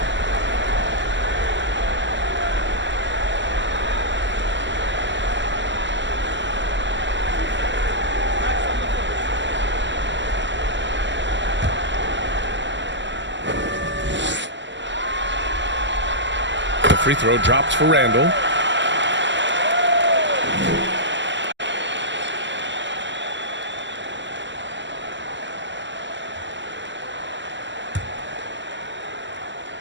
The free throw drops for Randall.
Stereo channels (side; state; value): left; late; 0.53 ms